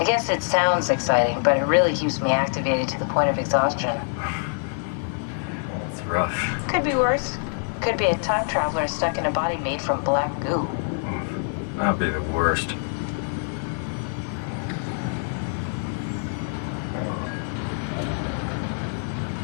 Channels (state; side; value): silent; right; digital silence